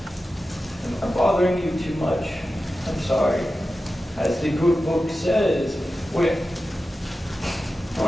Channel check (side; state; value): both; normal; correlation 0.93